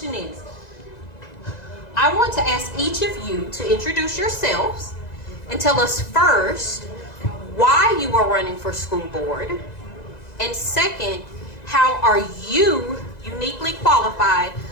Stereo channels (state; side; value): late; right; 2.0 ms